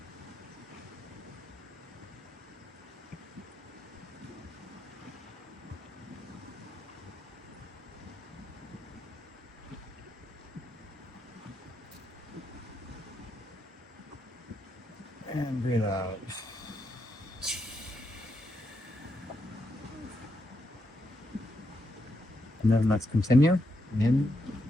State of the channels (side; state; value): both; normal; correlation 0.82